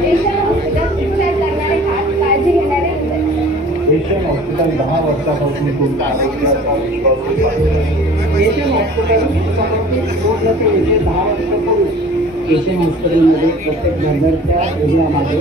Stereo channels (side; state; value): both; normal; correlation 0.46